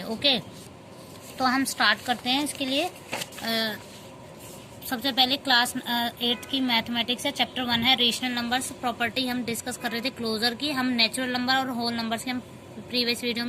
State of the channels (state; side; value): identical; both; correlation 1.00